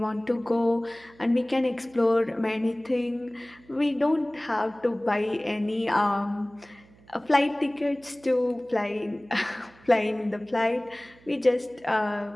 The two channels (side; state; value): right; noise; hum, 27 dB below the sound